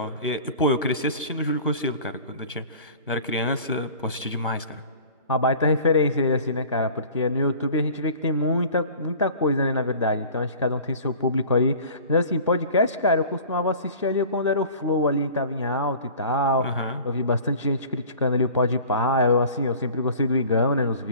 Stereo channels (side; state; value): both; inverted; correlation -0.44